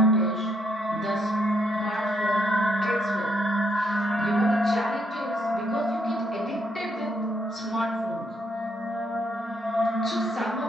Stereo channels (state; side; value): normal; both; correlation 0.74